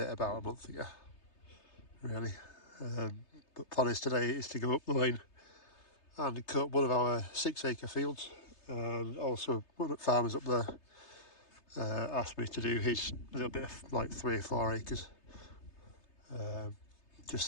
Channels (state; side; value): late; right; 3.3 ms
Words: about a month ago, really. But plan is today is to go up the lane and cut one of our 6-acre fields, and also one of the farmers up there asked me to do his little bit of like 3 or 4 acres, just